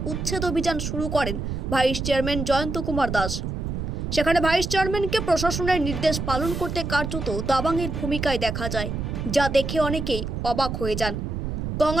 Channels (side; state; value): right; noise; rumble, 4 dB below the sound